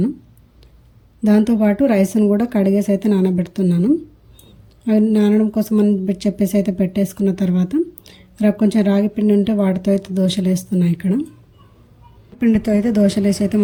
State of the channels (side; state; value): both; identical; correlation 1.00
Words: దాంతోపాటు రైస్ను కూడా కడిగేసి అయితే నానబెడుతున్నాను. అవి నానడం కోసం అని చెప్పేసి అయితే పెట్టేసుకున్న తర్వాత కొంచెం రాగి పిండి ఉంటే వాటితో అయితే దోశలు వేస్తున్నాను. ఇక్కడ పిండితో అయితే దోశలు వేసి అయితే